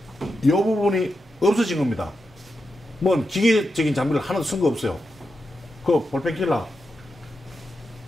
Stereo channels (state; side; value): normal; both; correlation 0.88